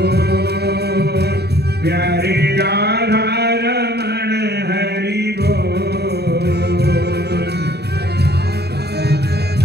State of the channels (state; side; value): late; left; 0.48 ms